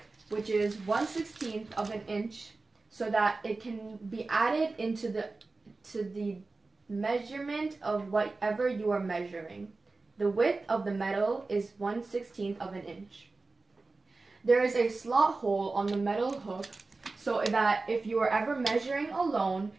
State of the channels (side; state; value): left; quieter; 3.6 dB